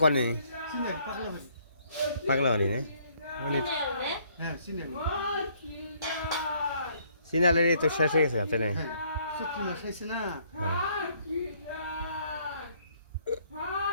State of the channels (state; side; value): inverted; both; correlation -0.65